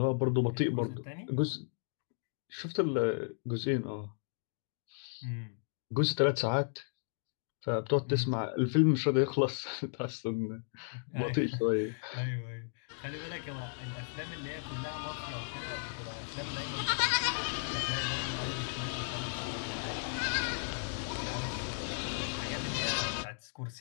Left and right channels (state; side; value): silent; right; digital silence